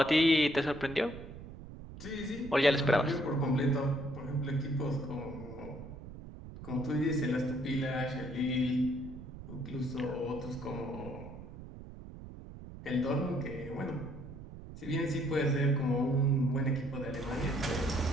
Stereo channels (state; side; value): noise; right; rumble, 13 dB below the sound